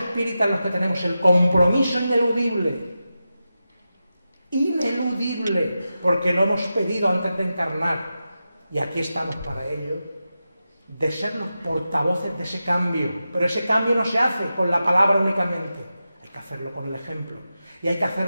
los que tenemos el compromiso ineludible, porque lo hemos pedido antes de encarnar, y aquí estamos para ello, de ser los portavoces de ese cambio. Pero ese cambio no se hace con la palabra únicamente, hay que hacerlo con el ejemplo. Y hay que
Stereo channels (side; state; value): both; inverted; correlation -0.91